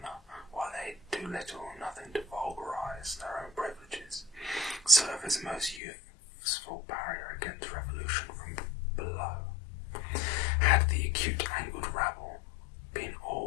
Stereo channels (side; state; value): right; drops out; at 5.8 s